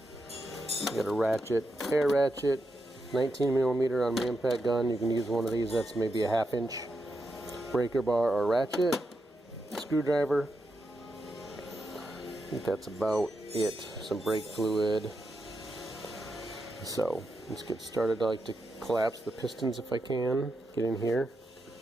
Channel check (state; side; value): normal; both; correlation 0.85